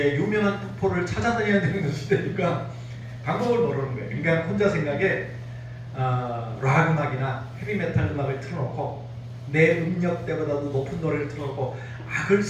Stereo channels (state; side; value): identical; both; correlation 1.00